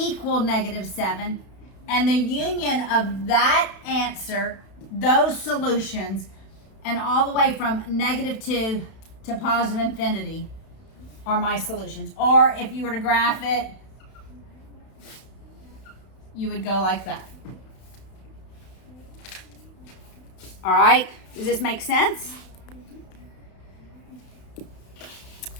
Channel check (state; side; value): late; right; 32 ms